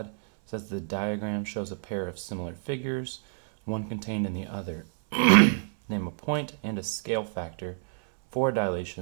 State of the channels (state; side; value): silent; left; 59 dB below the other